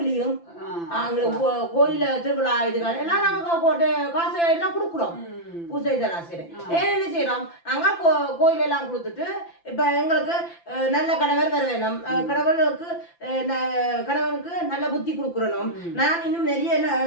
அங்க கோயில திருவிழா இதுகள் எல்லாம் நாங்க காசு எல்லாம் கொடுக்குறோம் பூஜை இதெல்லாம் செய்யறேன் என்ன செய்யறோம் நாங்க கோயில் எல்லாம் கொடுத்துட்டு இப்ப எங்களுக்கு நல்ல கணவர் வர வேணும் கணவனுக்கு நல்ல புத்தி கொடுக்குறணும் நான் இன்னும் நிறைய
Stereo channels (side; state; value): right; late; 5.9 ms